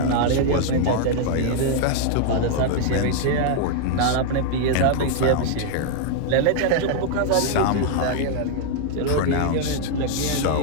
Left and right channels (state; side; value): different; both; correlation 0.00